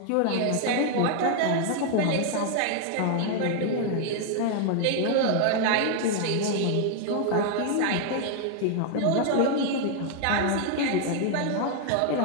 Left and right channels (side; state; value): both; different; correlation 0.00